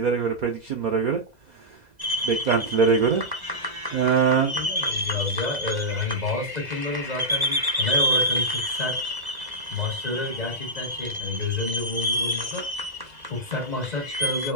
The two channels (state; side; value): late; left; 2.0 ms